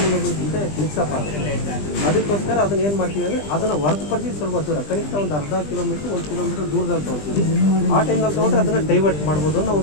ಜೊತೆ ಮಿಕ್ಸಪ್ ಆಗುತ್ತೆ. ಅದಕ್ಕೋಸ್ಕರ ಅದನ್ನು ಏನು ಮಾಡ್ತೀವಿ ಅಂದರೆ ಅದನ್ನು ಹೊರತುಪಡಿಸಿ ಸ್ವಲ್ಪ ದೂರ, ಕನಿಷ್ಠ ಒಂದು ಅರ್ಧ ಕಿಲೋಮೀಟ್ರ್ 1 ಕಿಲೋಮೀಟ್ರ್ ದೂರದಲ್ಲಿ ತೊಗೊಳ್ತೀವಿ. ಆ ಟೈಮ್ನಲ್ಲಿ ತೊಗೊಂಡ್ರೆ ಅದನ್ನು ಡೈವರ್ಟ್ ಮಾಡ್ಬೋದು ಅನ್ನೋ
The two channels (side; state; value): right; late; 20 ms